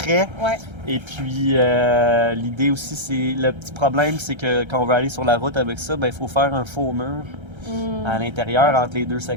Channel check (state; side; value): late; left; 1.3 ms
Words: Ouais. Et puis, l'idée aussi, c'est le petit problème, c'est que quand on veut aller sur la route avec ça, il faut faire un faux mur à l'intérieur entre les deux